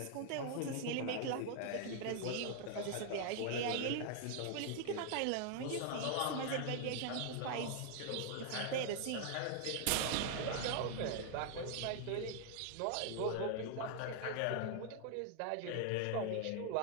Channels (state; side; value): different; both; correlation 0.00